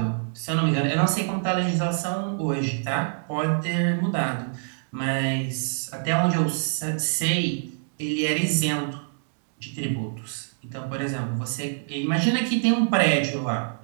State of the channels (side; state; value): left; silent; digital silence